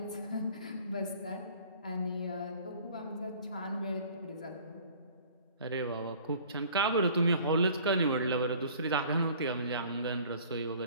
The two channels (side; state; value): both; inverted; correlation -0.50